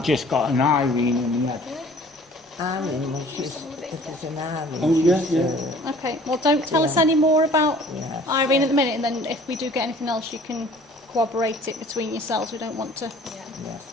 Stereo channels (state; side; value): normal; both; correlation 0.51